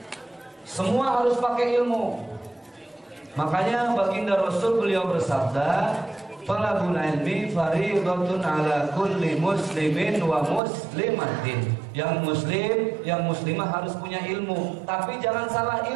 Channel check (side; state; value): left; drops out; at 10.6 s